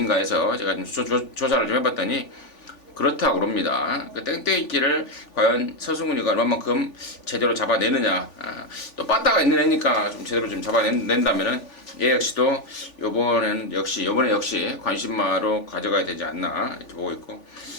해서 제가 좀 조사를 좀 해봤더니 그렇다고 그럽니다. 그 땡땡이끼를 과연 서승훈이가 얼마만큼 제대로 잡아내느냐, 또 빠따가 있는 애니까 좀 제대로 좀 잡아낸다면은 얘 역시도 요번에 역시 관심마로 가져가야 되지 않나 이렇게 보고 있고,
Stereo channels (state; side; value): late; right; 3.5 ms